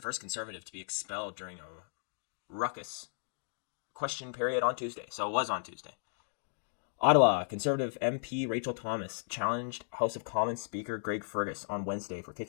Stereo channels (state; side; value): silent; right; digital silence